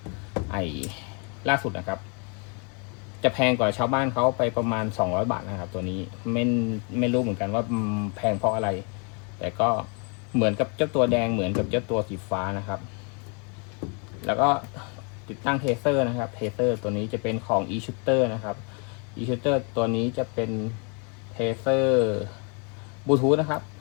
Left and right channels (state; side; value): quieter; right; 36.1 dB